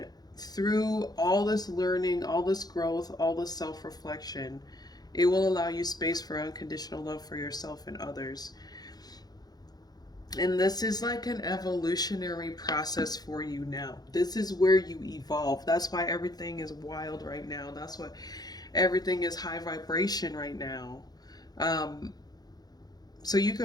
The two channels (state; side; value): late; right; 0.19 ms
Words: through all this learning, all this growth, all this self-reflection. It will allow you space for unconditional love for yourself and others. And this is like an evolutionary process for you now. This is where you evolve. That's why everything is wild right now. That's why everything is high vibration right now. So you